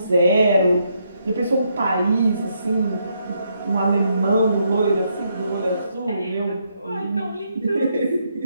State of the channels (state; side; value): inverted; both; correlation -0.76